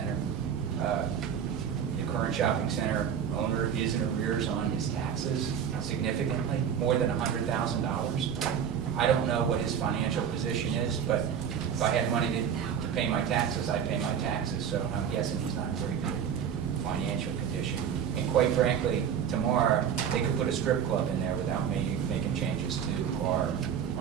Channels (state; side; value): quieter; left; 8.2 dB